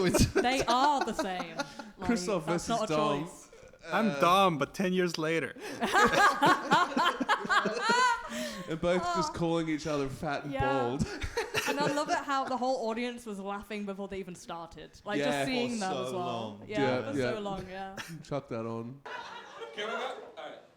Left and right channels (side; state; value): both; identical; correlation 1.00